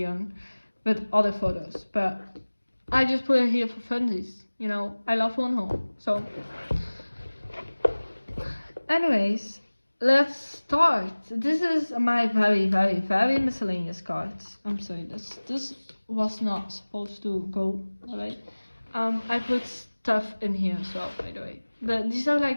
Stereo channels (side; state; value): both; inverted; correlation -1.00